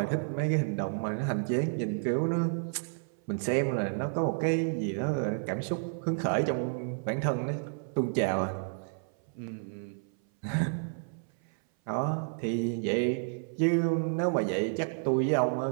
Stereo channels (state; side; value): silent; left; 57 dB below the other